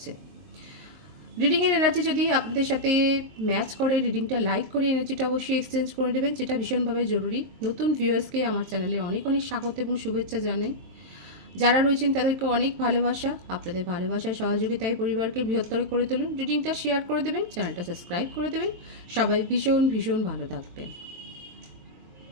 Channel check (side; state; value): left; late; 22 ms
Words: রিডিংয়ের এনার্জি যদি আপনাদের সাথে ম্যাচ করে, রিডিংটা লাইক করে এনার্জিটা অবশ্যই এক্সচেঞ্জ করে দেবেন, যেটা ভীষণভাবে জরুরি। নতুন ভিউয়ার্সকে আমার চ্যানেলে অনেক অনেক স্বাগত এবং শুভেচ্ছা জানাই। যারা রয়েছেন তাদেরকে অনেক ভালোবাসা। আপনাদের ভালোবাসায় সহযোগিতায় পরিবারকে বৃহত্তর করে তুলুন। রিডিংটা শেয়ার করে দেবেন, চ্যানেলটা সাবস্ক্রাইব করে দেবেন। সবাই ভীষণ ভীষণ ভালো থাকবেন।